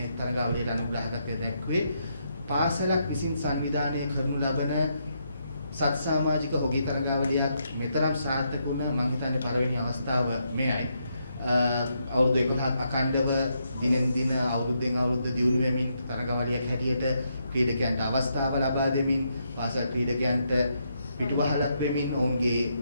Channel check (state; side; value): inverted; both; correlation -0.79